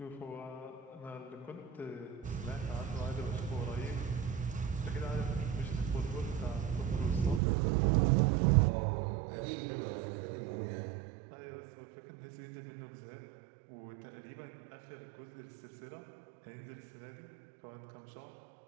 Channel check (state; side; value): drops out; left; at 7.4 s